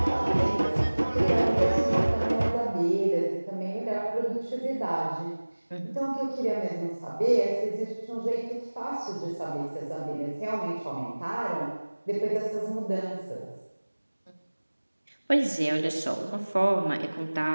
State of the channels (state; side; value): inverted; both; correlation -1.00